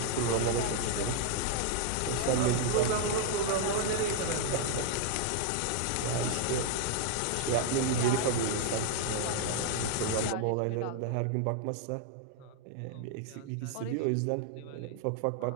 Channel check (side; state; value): both; different; correlation 0.00